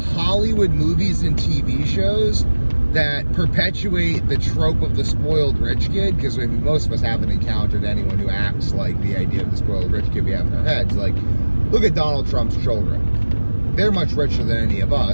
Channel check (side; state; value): both; inverted; correlation -1.00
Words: movies and TV shows that perpetuate the trope of the spoiled rich kid, because most of us haven't encountered anyone who acts like the idea of the spoiled rich kid we have in our heads. Like, look at Donald Trump's children. They're much richer than any of